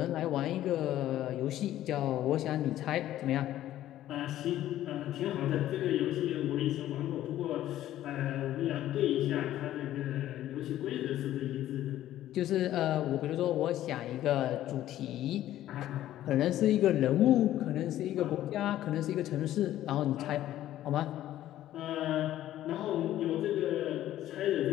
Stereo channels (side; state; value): right; quieter; 13.2 dB